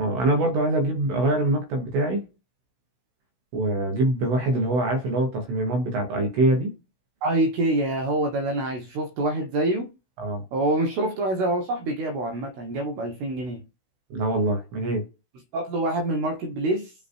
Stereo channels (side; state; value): left; late; 16 ms